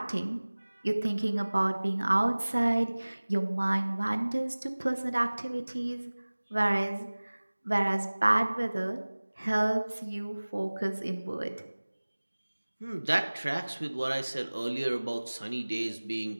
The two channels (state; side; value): inverted; both; correlation -1.00